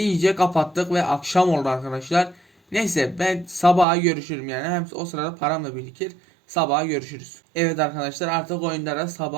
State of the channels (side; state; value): left; drops out; at 3.9 s